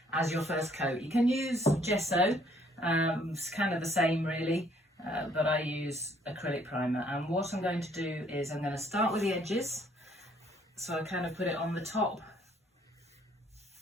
as your first coat. You can use gesso, it's kind of the same really, but I use acrylic primer. And what I'm going to do is I'm going to start with the edges. So I kind of put it on the top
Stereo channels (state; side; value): normal; both; correlation 0.64